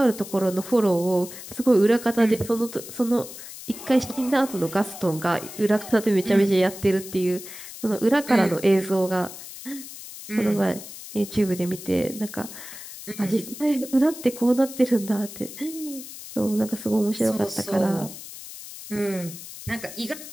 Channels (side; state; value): left; noise; hiss, 13 dB below the sound